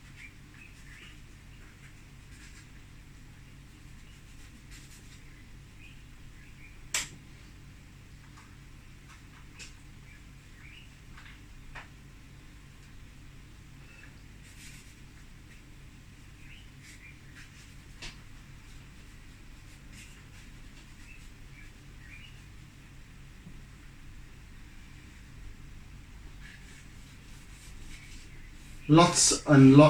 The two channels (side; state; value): both; identical; correlation 1.00